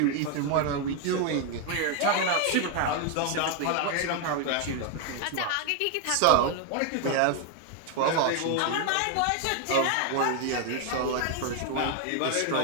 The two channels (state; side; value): different; both; correlation 0.01